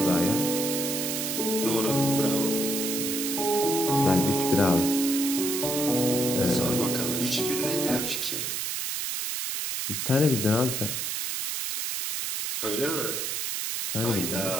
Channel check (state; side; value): noise; right; hiss, 2 dB below the sound